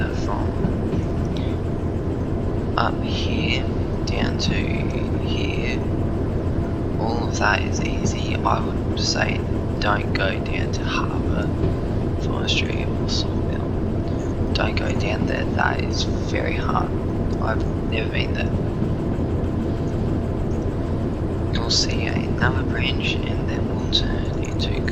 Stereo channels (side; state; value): both; identical; correlation 1.00